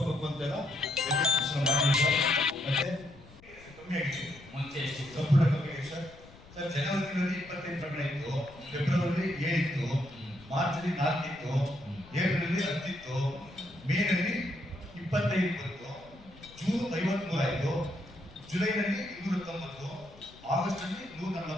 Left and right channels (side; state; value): left; noise; rumble, 22 dB below the sound